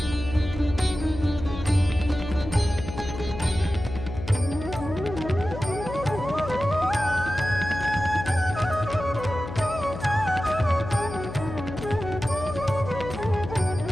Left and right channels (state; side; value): noise; left; hum, 9 dB below the sound